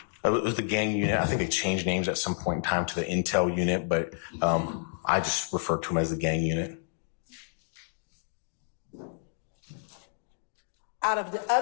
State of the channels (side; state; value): right; silent; 55 dB below the other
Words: It was the gang unit. I think they changed names at some point in time to the intel unit, but I just refer to them as the gang unit. Out of the